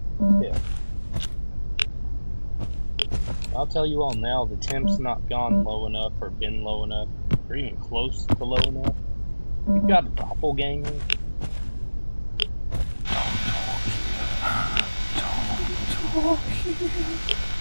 hit. I'll tell you all now, the temp's not gone low enough or been low enough or even close to low enough. You've got a doppelganger.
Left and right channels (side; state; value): both; inverted; correlation -1.00